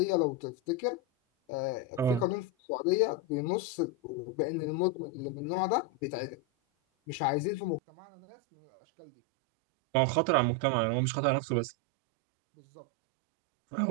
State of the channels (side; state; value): left; drops out; at 7.8 s